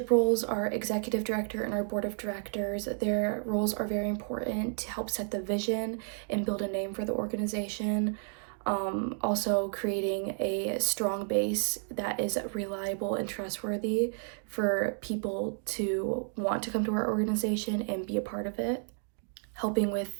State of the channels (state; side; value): silent; left; 57 dB below the other